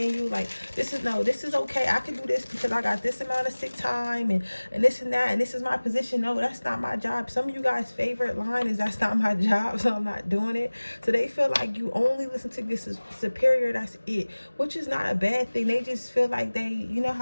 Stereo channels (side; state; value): both; inverted; correlation -1.00